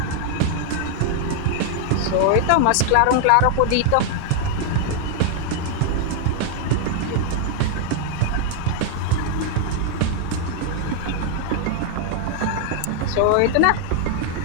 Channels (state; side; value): different; both; correlation 0.00